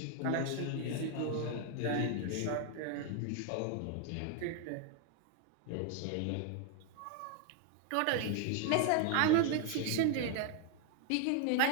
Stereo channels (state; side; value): different; both; correlation 0.00